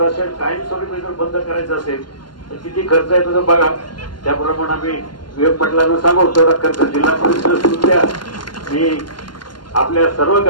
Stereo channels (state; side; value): late; right; 0.71 ms